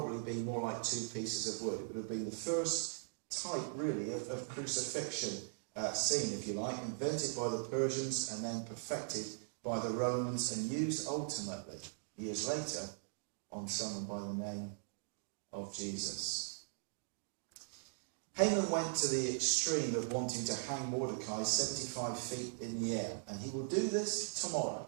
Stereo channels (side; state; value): left; silent; digital silence